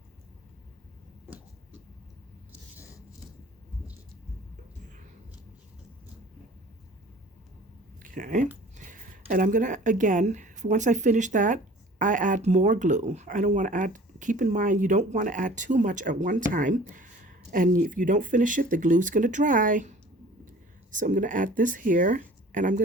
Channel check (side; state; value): both; normal; correlation 0.47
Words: okay, and I'm gonna, again, once I finish that, I add more glue. I don't want to add, keep in mind, you don't want to add too much at one time, and if you don't finish it, the glue's gonna dry. So I'm gonna add this here, and I'm